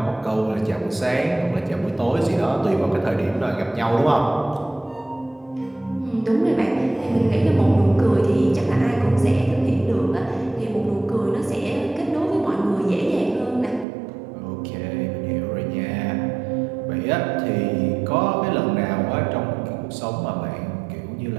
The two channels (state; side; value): drops out; left; at 13.9 s